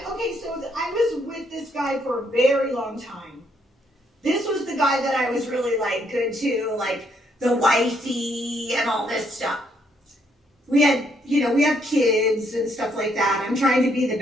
so I was with this guy for a very long time. This was the guy that I was really like good to, like the wifey and all this stuff. We have kids and stuff like that. I'm trying to be the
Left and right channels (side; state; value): both; normal; correlation 0.71